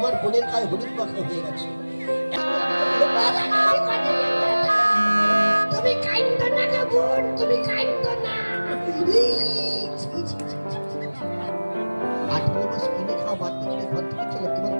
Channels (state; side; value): inverted; both; correlation -1.00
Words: বোনের গায়ে হলুদ মাখা হয়ে গেছে। তুমি কাইন্দ না গো বোন, তুমি কাইন্দ না। 18 মাস কিনে খাওয়া বাধ্য করে ঘর থেকে চলে, তোমার